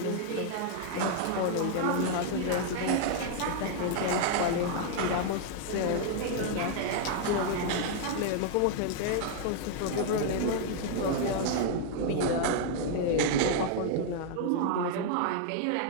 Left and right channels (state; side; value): different; both; correlation 0.00